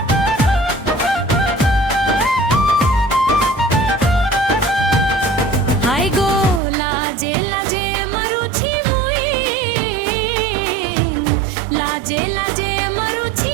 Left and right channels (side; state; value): left; drops out; at 6.6 s